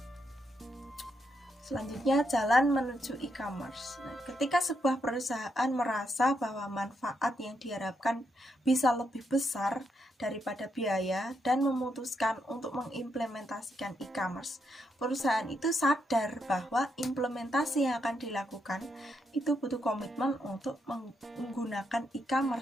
Selanjutnya, jalan menuju e-commerce. Nah, ketika sebuah perusahaan merasa bahwa manfaat yang diharapkan bisa lebih besar daripada biaya dan memutuskan untuk mengimplementasikan e-commerce, perusahaan itu sadar bahwa implementasi yang akan dilakukan itu butuh komitmen untuk menggunakan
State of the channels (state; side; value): normal; both; correlation 0.80